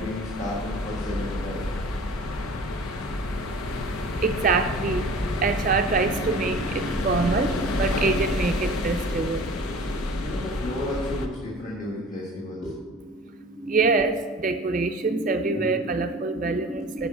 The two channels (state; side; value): normal; both; correlation 0.43